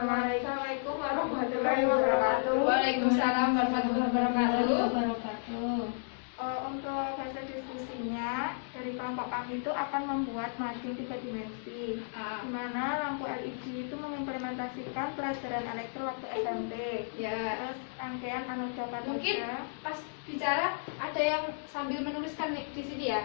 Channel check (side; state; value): right; silent; digital silence